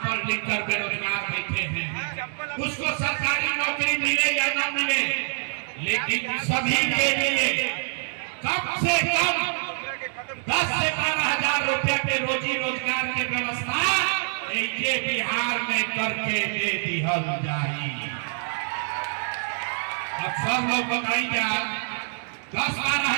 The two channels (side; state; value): left; silent; digital silence